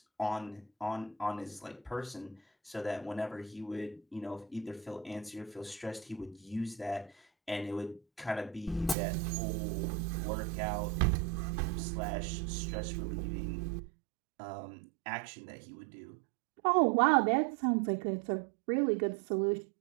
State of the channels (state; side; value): drops out; left; at 9.0 s